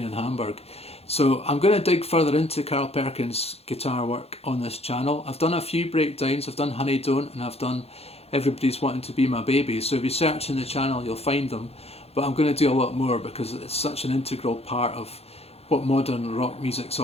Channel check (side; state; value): right; late; 0.29 ms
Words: in Hamburg. So I'm going to dig further into Carl Perkins' guitar work on this channel. I've done a few breakdowns, I've done Honey Don't, and I've done Everybody's Wanting to Be My Baby, so if you search in the channel you'll find them, but I'm going to do a lot more because it's such an integral part of what modern rock music's